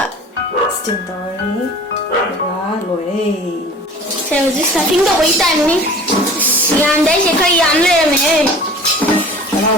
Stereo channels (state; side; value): normal; both; correlation 0.43